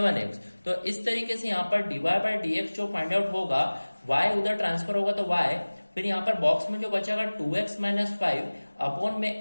तो इस तरीके से यहाँ पर dy बाय dx जो फाइंड आउट होगा, y उधर ट्रांसफर होगा तो y, फिर यहाँ पर बॉक्स में जो बचेगा 2x माइनस 5 अपॉन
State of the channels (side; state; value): both; inverted; correlation -1.00